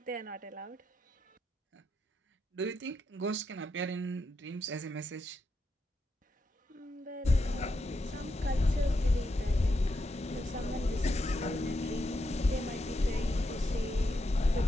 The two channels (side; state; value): both; normal; correlation 0.84